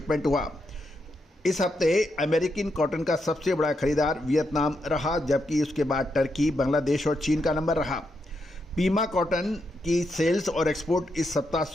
हुआ। इस हफ्ते अमेरिकन कॉटन का सबसे बड़ा खरीदार वियतनाम रहा, जबकि उसके बाद टर्की, बांग्लादेश और चीन का नंबर रहा। पीमा कॉटन की सेल्स और एक्सपोर्ट इस सप्ताह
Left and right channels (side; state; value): both; normal; correlation 0.82